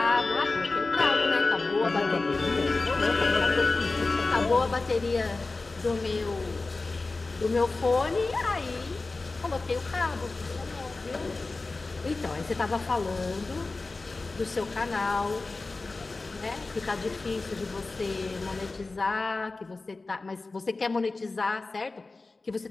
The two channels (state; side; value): quieter; right; 3.5 dB